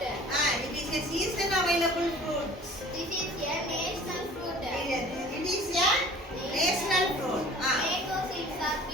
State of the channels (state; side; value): normal; both; correlation 0.47